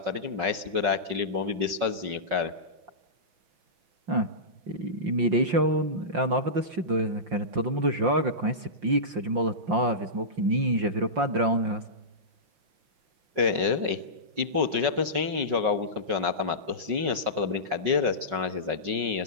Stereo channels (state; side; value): late; left; 5.4 ms